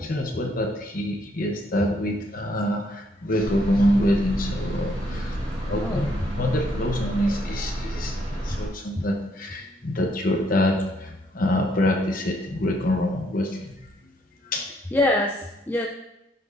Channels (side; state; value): both; normal; correlation 0.70